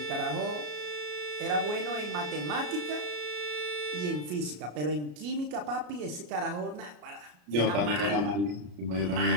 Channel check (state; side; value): late; left; 33 ms